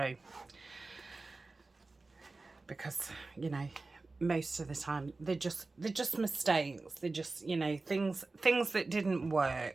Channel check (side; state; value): left; quieter; 3.5 dB